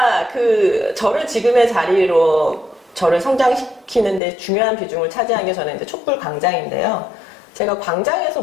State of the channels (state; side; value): drops out; right; at 4.2 s